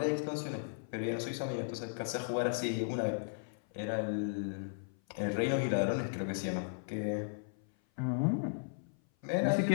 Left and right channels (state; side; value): silent; right; 54 dB below the other